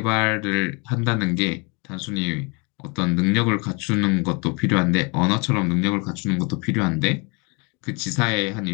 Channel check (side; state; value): right; quieter; 31.2 dB